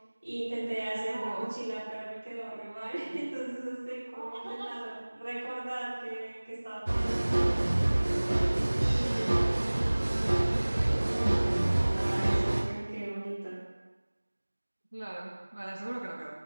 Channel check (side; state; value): both; inverted; correlation -1.00